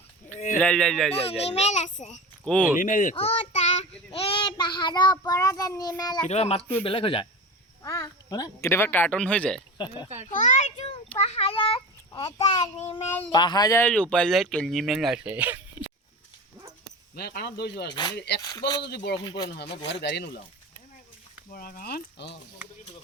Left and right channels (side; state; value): both; normal; correlation 0.30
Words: লা লা লা লা লা নিমেল আছে ক'ত ও তা এই পাহাৰৰ ওপৰত নিমেল আছে কেতিয়াবা মাতটো বেলেগ হৈ যায় কেতিয়াবা কাৰ্টুন হৈ যায় হয়তো পাহাৰত এটা নিমেল পাহাৰৰ ওপৰত নিমেল আছে মই কাণত দৌৰিছোঁ আৰু এক টোপালো যদি বৰষুণ পৰে নহয় মই গুৱাহাটীত গাড়ী নোলাওঁ বৰা গাঁৱত